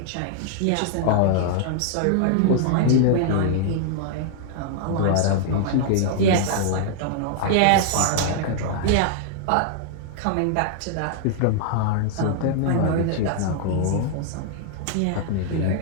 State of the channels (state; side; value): different; both; correlation -0.01